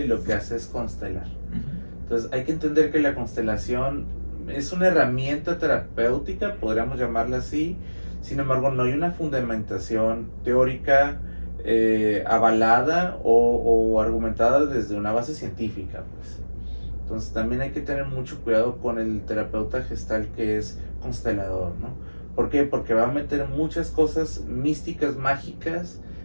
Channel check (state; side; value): inverted; both; correlation -1.00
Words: lo que hace es constelar. Entonces hay que entender que la constelación es una herramienta terapéutica, podríamos llamarla así. Sin embargo, no hay una fundamentación teórica avalada o argumentada desde una base científica, pues. Entonces también hay que tener mucho cuidado con el terapeuta gestal que es constelador, ¿no? ¿Por qué? Porque va a meter muchas cosas místicas, mágicas,